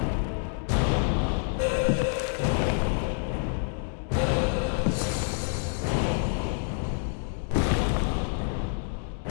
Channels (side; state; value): right; silent; 60 dB below the other